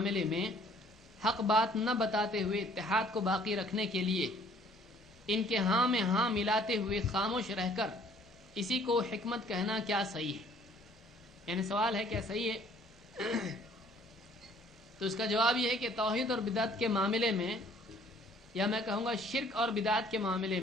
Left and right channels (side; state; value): both; normal; correlation 0.58